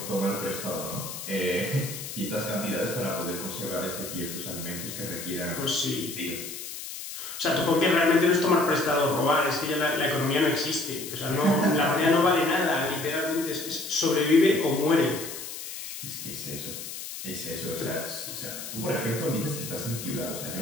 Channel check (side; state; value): left; noise; hiss, 9 dB below the sound